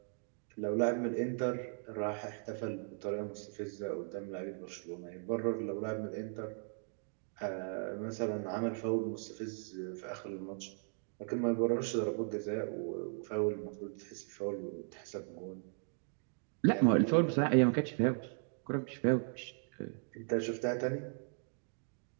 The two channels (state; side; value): silent; left; 53 dB below the other